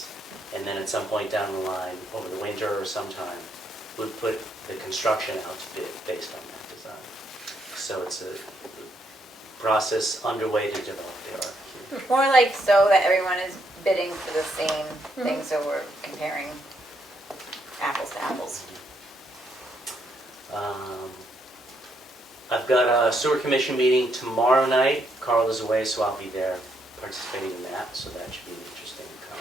and then at some point down the line, over the winter or sometime, we'd put the construction out to bid based on that design. So it's a process underway to develop the RFQ. More like so that everyone is bidding for the same thing, so we're comparing apples to apples. I've got a sewer commission meeting tomorrow night. Carl is away, so I'll be there participating in that, so that should be an interesting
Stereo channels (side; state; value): both; normal; correlation 0.75